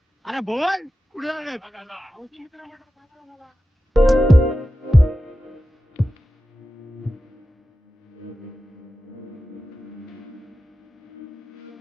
अरे बोल कुठे झाले?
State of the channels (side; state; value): both; normal; correlation 0.93